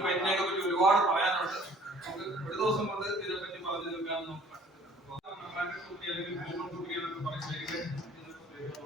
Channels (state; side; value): normal; both; correlation 0.54